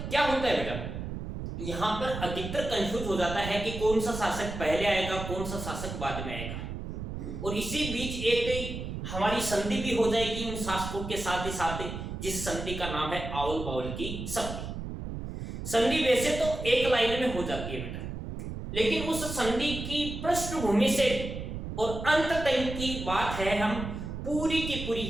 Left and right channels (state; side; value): noise; right; rumble, 7 dB below the sound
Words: क्या होता है बेटा, यहाँ पर अधिकतर कंफ्यूज हो जाता है कि कौन सा शासक पहले आएगा, कौन सा शासक बाद में आएगा, और इसी बीच एक हमारी संधि भी हो जाएगी उन शासकों के साथ ही साथ, जिस संधि का नाम है आवल बावल की संधि। संधि वैसे तो एक लाइन में हो जाती है बेटा, लेकिन उस संधि की पृष्ठभूमि से और अंत तक की बात है, हम पूरी की पूरी